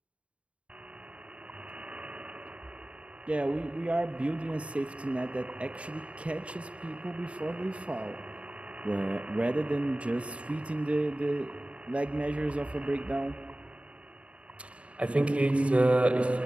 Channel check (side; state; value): left; late; 0.062 ms